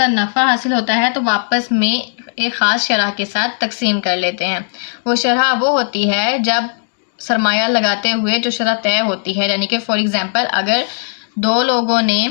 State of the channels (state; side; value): silent; right; digital silence